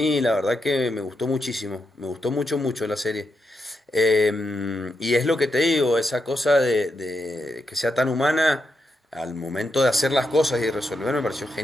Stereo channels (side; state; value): both; normal; correlation 0.84